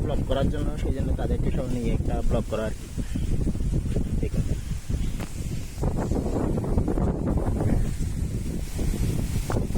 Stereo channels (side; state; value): both; identical; correlation 1.00